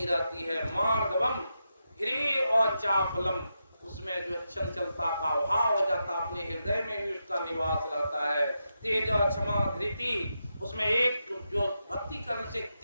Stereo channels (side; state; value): both; inverted; correlation -0.86